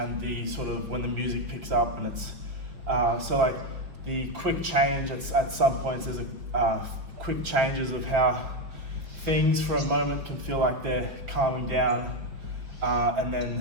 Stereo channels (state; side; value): late; left; 5.5 ms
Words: the sort of when the music picks up, and it's so like the quick change at some points. There's a quick changes of how things for a moment can feel like they're calming down, and